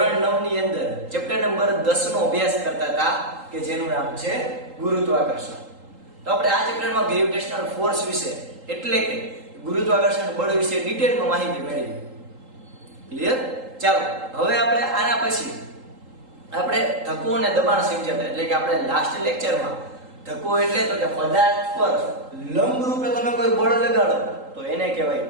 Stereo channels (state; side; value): late; left; 3.8 ms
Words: 9 ની અંદર ચેપ્ટર નંબર 10 નો અભ્યાસ કરતા હતા કે જેનું નામ છે ગુરુત્વાકર્ષણ. તો આપણે આ ચેપ્ટરમાં ગ્રેવિટેશનલ ફોર્સ વિશે એટલે કે ગુરુત્વાકર્ષણ બળ વિશે ડિટેલમાં માહિતી મેળવી. ક્લિયર? ચાલો હવે આપણે આના પછી આપણે ધક્કો અને દબાણ સમજ્યા, એટલે કે આપણે લાસ્ટ લેક્ચરમાં ધક્કો એટલે તો કે પદાર્થ પર લંબ રૂપે તમે કોઈ બળ લગાડો તો એને કહેવાય